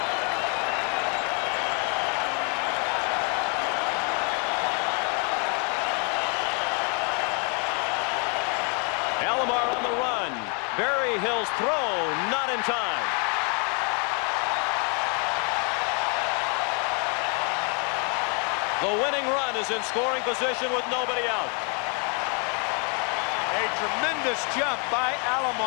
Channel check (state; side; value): quieter; right; 37.0 dB